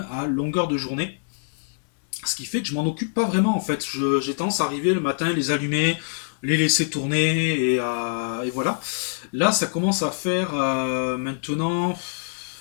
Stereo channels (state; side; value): silent; right; 62 dB below the other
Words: à longueur de journée. Ce qui fait que je m'en occupe pas vraiment en fait. J'ai tendance à arriver le matin, les allumer, les laisser tourner et voilà. Là, ça commence à faire maintenant,